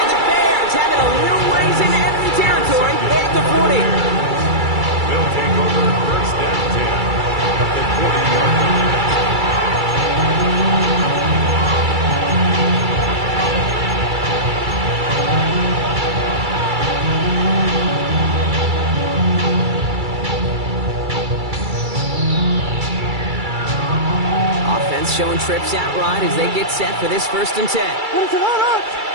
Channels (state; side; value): late; left; 2.3 ms